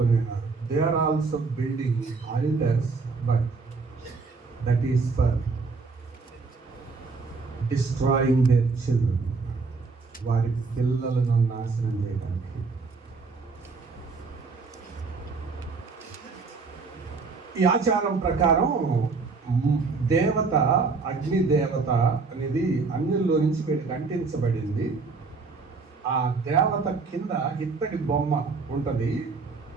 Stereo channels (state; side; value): quieter; left; 4.4 dB